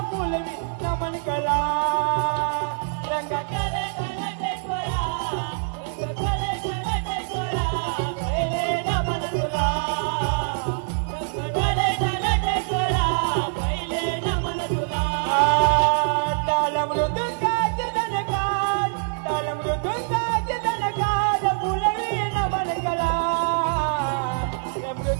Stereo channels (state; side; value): silent; left; digital silence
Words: फुलवे नमन कला। रंगकलेचा नटेश्वरा, रंगकलेचा नटेश्वरा, पहिले नमन तुला। रंगकलेचा नटेश्वरा, पहिले नमन तुला। ताल मृदुंगाचे दणकार, ताल मृदुंगाचे दणकार, फुलवे नमन कला।